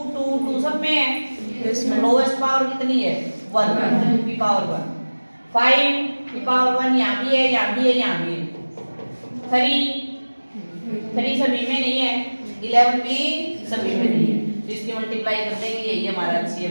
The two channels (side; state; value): both; inverted; correlation -1.00